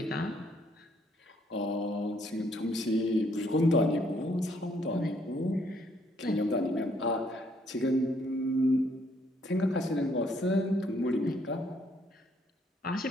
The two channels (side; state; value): both; normal; correlation 0.68